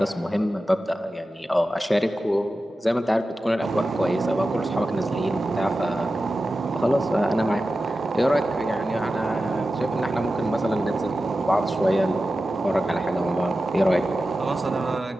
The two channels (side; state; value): both; normal; correlation 0.93